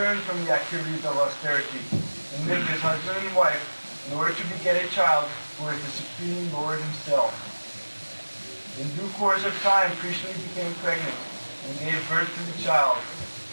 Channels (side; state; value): both; inverted; correlation -1.00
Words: from the activities of austerity and lived as husband and wife in order to beget a child who is the Supreme Lord himself. In due course of time, Kṛṣṇa became pregnant and gave birth to the child.